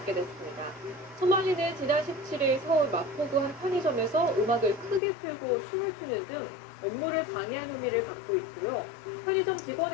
됐습니다. 소말리는 지난 17일 서울 마포구 한 편의점에서 음악을 크게 틀고 춤을 추는 등 업무를 방해한 혐의를 받고 있고요. 편의점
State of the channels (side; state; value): right; drops out; at 5.0 s